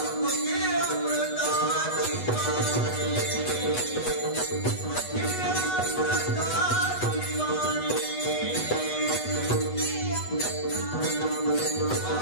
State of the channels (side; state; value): right; late; 8.1 ms